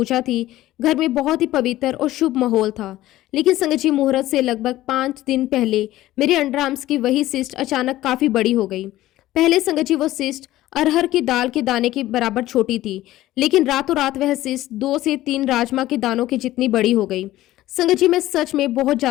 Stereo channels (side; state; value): right; quieter; 15.5 dB